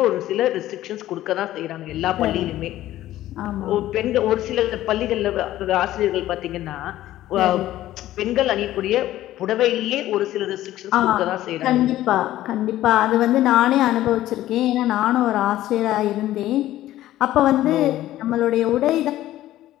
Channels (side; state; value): right; quieter; 14.3 dB